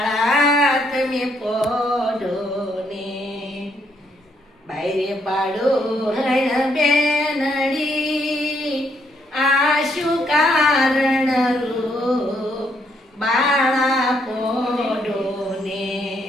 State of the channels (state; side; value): normal; both; correlation 0.73